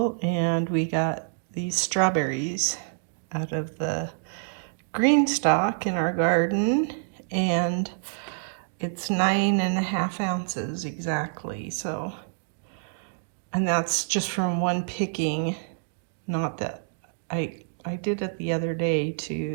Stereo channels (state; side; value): silent; left; digital silence